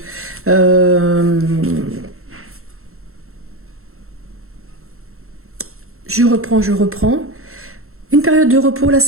Je reprends. Une période de repos, là,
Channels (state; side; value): late; left; 0.62 ms